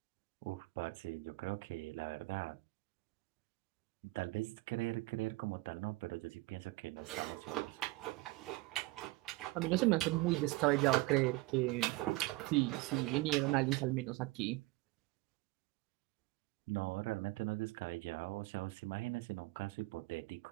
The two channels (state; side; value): quieter; left; 21.0 dB